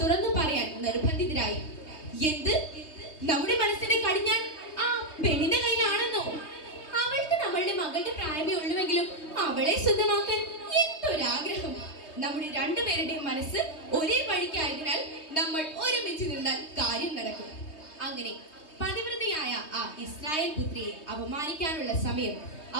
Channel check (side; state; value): right; late; 3.2 ms